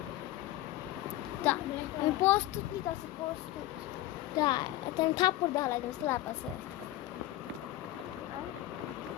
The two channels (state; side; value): quieter; right; 15.4 dB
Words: তা আমি প্রস্তুত নিতেছি প্রস্তুত তা এটা আমি থাপ্পড় দেওয়া লাগবে স্ল্যাপ আছে